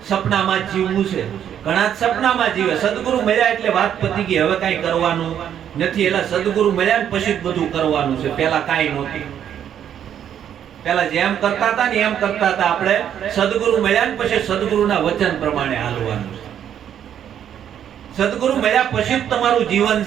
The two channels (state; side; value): quieter; left; 9.6 dB